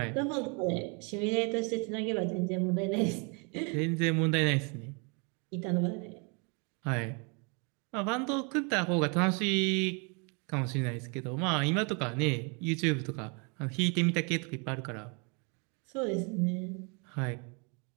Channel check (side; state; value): left; quieter; 33.7 dB